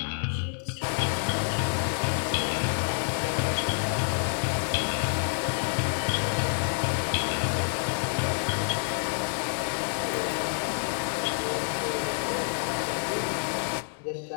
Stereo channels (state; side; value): silent; right; digital silence